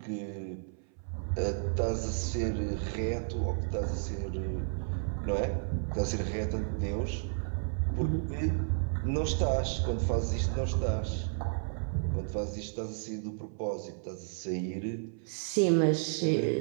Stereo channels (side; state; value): left; silent; 56 dB below the other